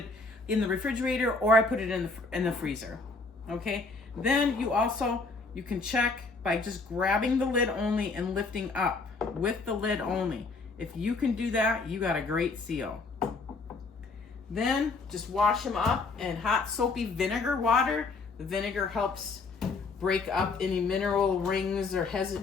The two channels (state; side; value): quieter; right; 3.9 dB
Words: in the refrigerator or I put it in the freezer. Okay. Then you can check by just grabbing the lid only and lifting up with the lid only. If you can do that, you got a great seal. Then just wash them up in hot soapy vinegar water. The vinegar helps break up any mineral rings or